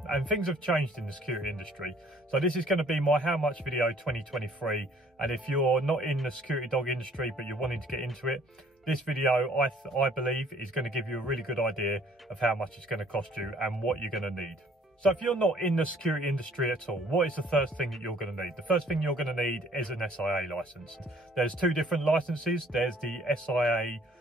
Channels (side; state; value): both; normal; correlation 0.58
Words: and things have changed in the security industry. So this is going to be my how much video 2023, and if you're not in the security dog industry but you're wanting to get into it, this video I believe is going to give you a really good idea of how much it's going to cost you and what you're going to need. So if you're not in the security industry at all, what is the first thing that you're going to need? The first thing you're going to need is an SIA license. There's two different licenses. There's the SIA